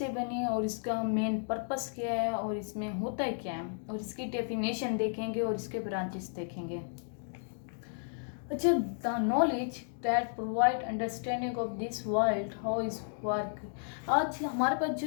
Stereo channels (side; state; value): right; silent; digital silence